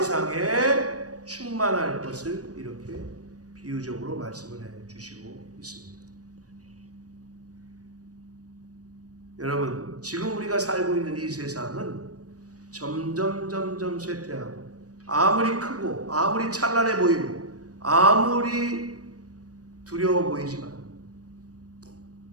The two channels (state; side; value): late; left; 0.67 ms